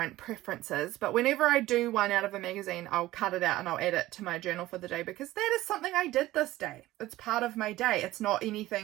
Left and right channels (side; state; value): left; quieter; 16.5 dB